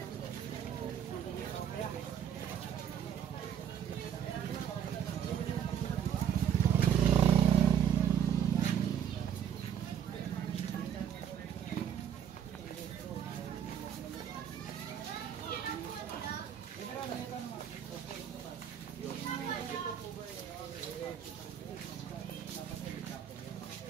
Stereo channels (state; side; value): quieter; left; 9.0 dB